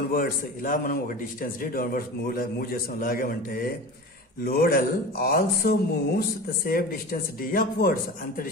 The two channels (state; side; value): normal; both; correlation 0.33